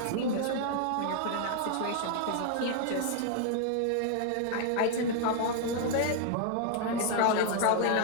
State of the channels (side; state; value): both; different; correlation 0.00